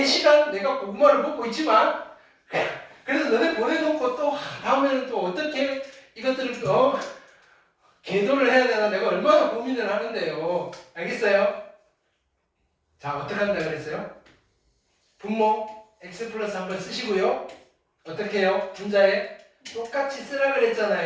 시간 내가 고구마를 먹고 있지만 그래서 너네 보내놓고 또 다음에는 또 어떻게 이것들을 또 계도를 해야 되나 내가 얼마나 고민을 하는데요. 알겠어요? 자 어떻게 한다 그랬어요? 분모 x 플러스 한번 쓰시고요. 어떻게 해요? 분자에 똑같이 쓰라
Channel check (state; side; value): identical; both; correlation 1.00